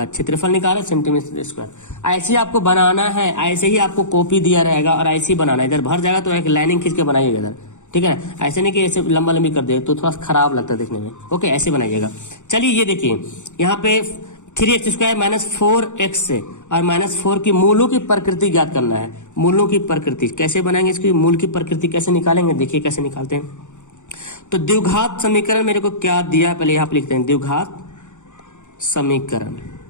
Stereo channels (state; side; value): late; right; 0.85 ms